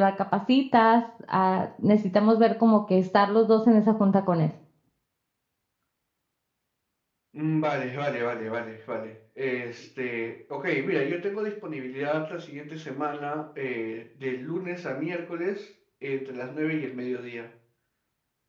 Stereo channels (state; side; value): identical; both; correlation 1.00